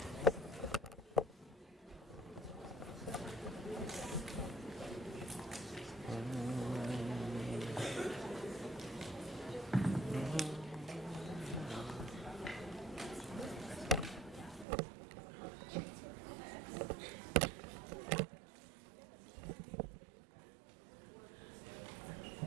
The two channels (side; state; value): left; drops out; at 14.7 s